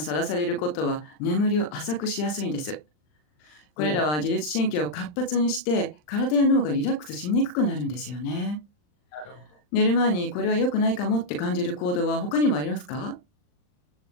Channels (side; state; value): right; late; 39 ms